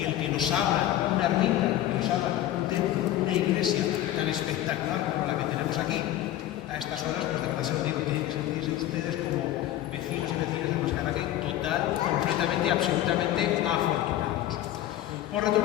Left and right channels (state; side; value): quieter; right; 13.2 dB